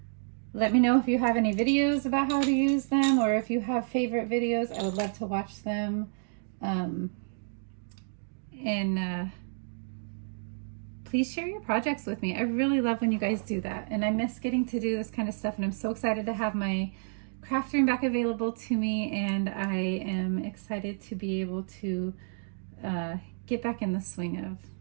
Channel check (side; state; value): left; silent; digital silence